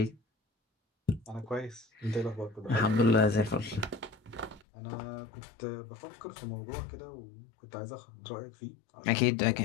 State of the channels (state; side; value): drops out; right; at 4.7 s